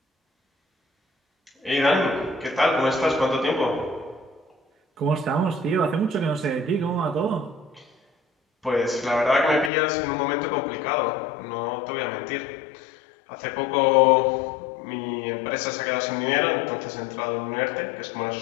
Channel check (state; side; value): drops out; right; at 9.7 s